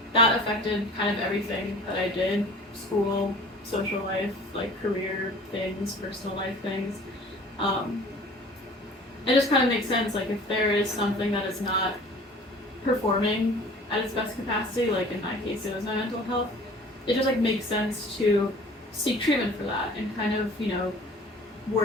that affected kind of everything that I did, school, social life, like career things, personal life things. Um, it just kind of makes sense, like if there is something that is not performing at its best capacity, like in my case it was my mental health, it just like makes sense to seek treatment for that and kind of,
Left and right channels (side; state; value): both; normal; correlation 0.46